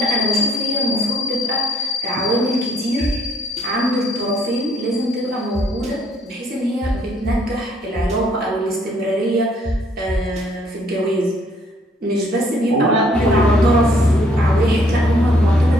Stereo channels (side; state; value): both; normal; correlation 0.64